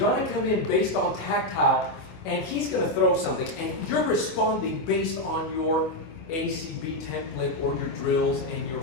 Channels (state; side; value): late; right; 25 ms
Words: come in based on tactile, and he's gonna throw something, and you're responding based on your ACB template or your drills and your